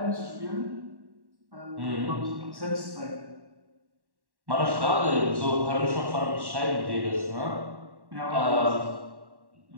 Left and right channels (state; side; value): late; left; 1.1 ms